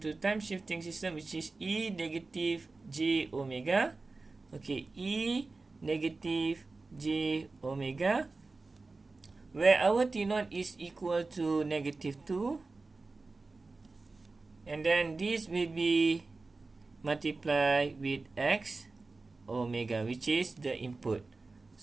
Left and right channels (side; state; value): left; quieter; 3.7 dB